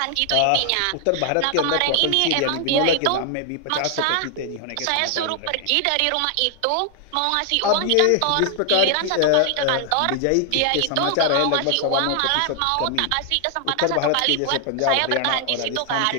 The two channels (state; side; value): different; both; correlation 0.00